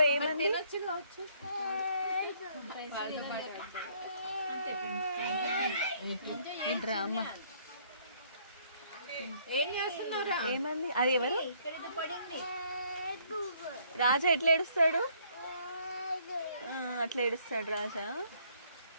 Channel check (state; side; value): inverted; both; correlation -0.64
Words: ఏమని తినొచ్చు కావచ్చు. డ్రామా ఏం చేస్తున్నారా? ఏమంది? అది ఎవరు? రాజా ఎట్లా ఏడుస్తాడు? అట్లా ఏడుస్తాడు రాజా.